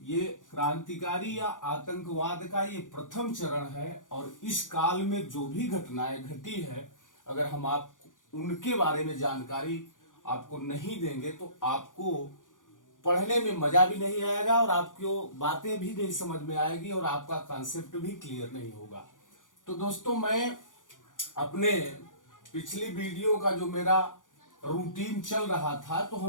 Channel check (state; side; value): late; right; 0.88 ms